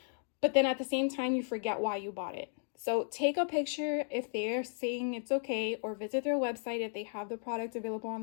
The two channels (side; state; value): right; silent; digital silence